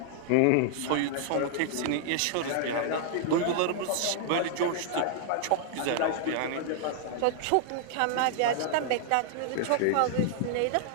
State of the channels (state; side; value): different; both; correlation -0.01